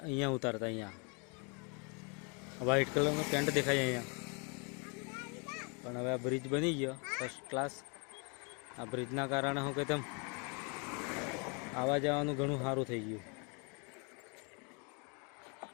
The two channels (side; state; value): right; quieter; 34.7 dB